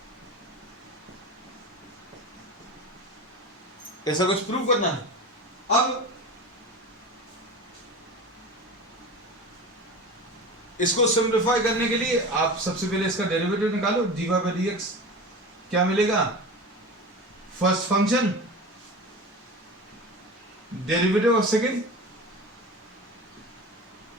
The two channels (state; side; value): normal; both; correlation 0.31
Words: ऐसा कुछ prove करना है। अब इसको सिंप्लीफाई करने के लिए आप सबसे पहले इसका डेरिवेटिव निकालो, dy by dx क्या मिलेगा, first function derivative of second